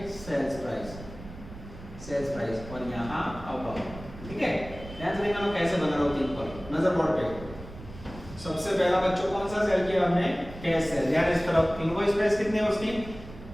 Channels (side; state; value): right; noise; rumble, 15 dB below the sound